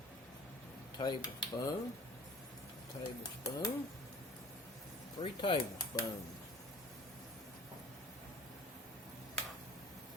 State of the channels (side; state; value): both; normal; correlation 0.44